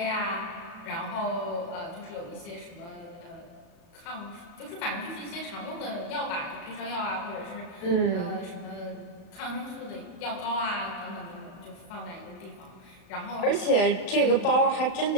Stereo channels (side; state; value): right; late; 37 ms